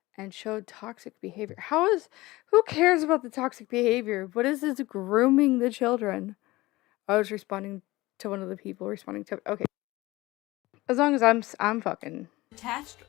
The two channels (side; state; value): right; quieter; 19.7 dB